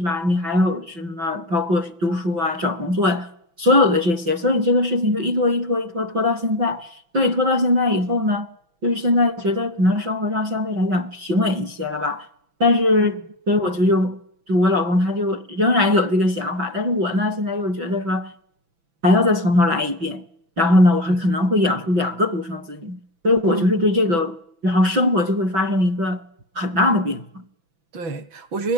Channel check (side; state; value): left; late; 6.0 ms